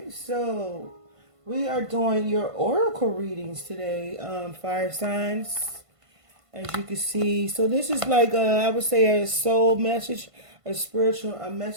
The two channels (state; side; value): late; left; 1.5 ms